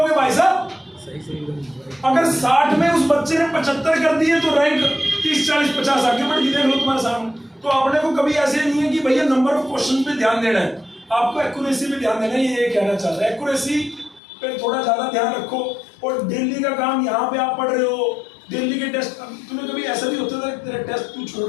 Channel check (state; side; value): drops out; right; at 14.2 s